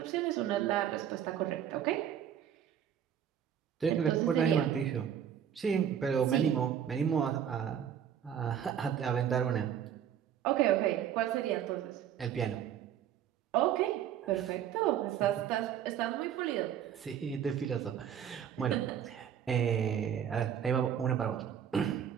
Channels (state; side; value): quieter; left; 9.2 dB